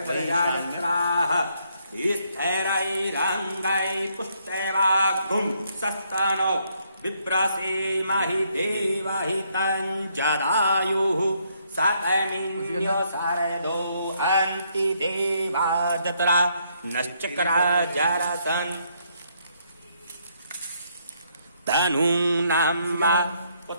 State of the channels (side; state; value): both; inverted; correlation -0.72